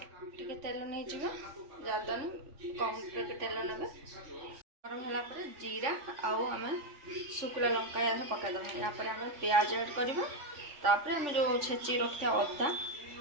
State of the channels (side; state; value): left; late; 3.5 ms